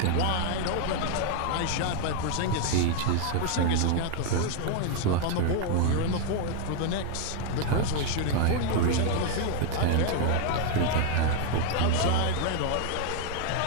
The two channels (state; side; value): different; both; correlation 0.01